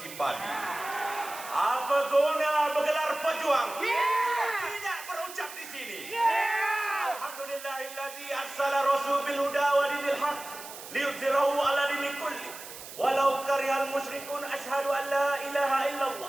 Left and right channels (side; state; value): right; noise; hiss, 13 dB below the sound